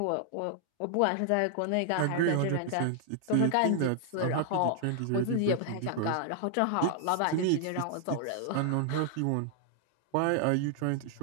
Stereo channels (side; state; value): both; different; correlation 0.00